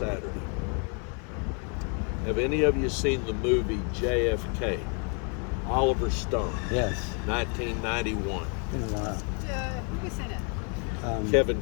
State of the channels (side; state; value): right; quieter; 37.9 dB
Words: Have any of you seen the movie JFK? Oliver Stone. Yes. 1991. Been a while. Who was in it? Kevin